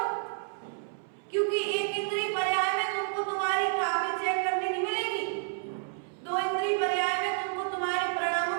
क्योंकि एक इंद्रिय पर्याय में तुमको तुम्हारी कॉपी चेक करने नहीं मिलेगी, दो इंद्रिय पर्याय में तुमको तुम्हारे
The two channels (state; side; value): silent; left; 58 dB below the other